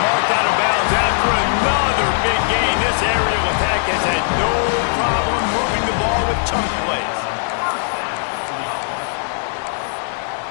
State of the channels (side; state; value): right; silent; digital silence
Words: marked out of bounds after another big gain. This aerial attack has had no problem moving the ball with chunk plays.